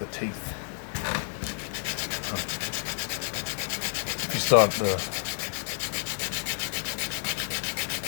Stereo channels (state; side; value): silent; right; 58 dB below the other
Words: teeth. If you start the